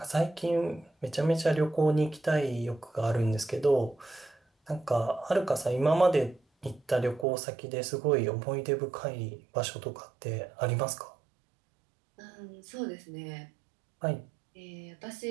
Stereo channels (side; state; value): left; drops out; at 7.2 s